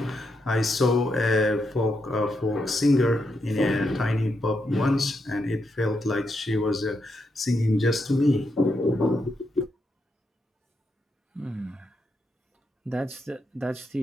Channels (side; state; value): both; normal; correlation 0.82